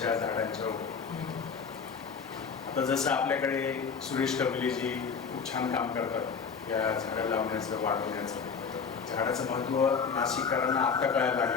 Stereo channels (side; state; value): right; quieter; 5.9 dB